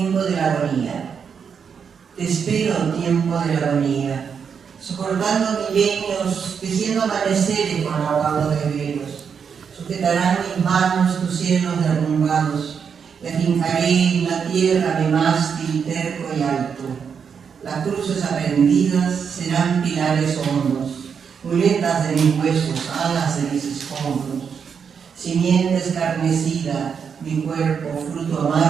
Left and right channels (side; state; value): left; quieter; 6.7 dB